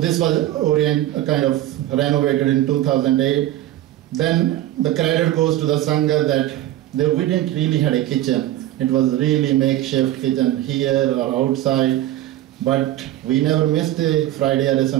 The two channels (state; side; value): quieter; left; 14.0 dB